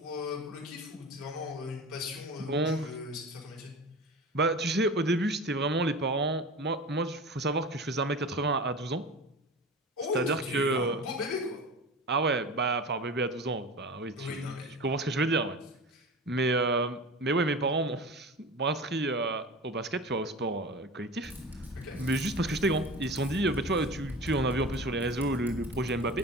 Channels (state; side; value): normal; both; correlation 0.32